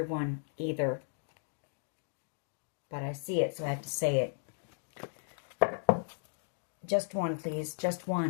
either. But I see it, so I have to say it. Just one, please. Just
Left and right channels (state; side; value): silent; right; digital silence